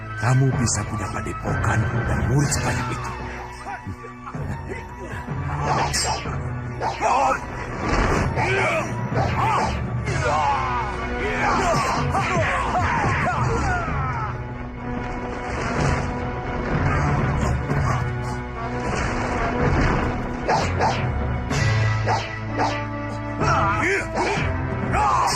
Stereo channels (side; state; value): both; identical; correlation 1.00